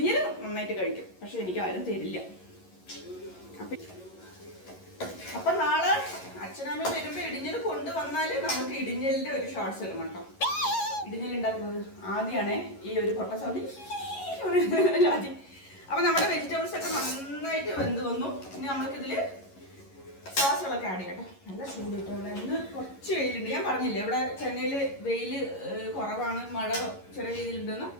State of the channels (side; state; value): right; late; 11 ms